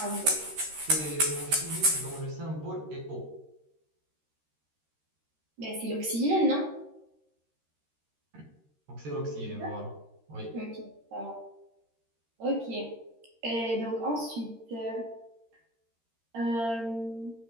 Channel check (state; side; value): late; left; 13 ms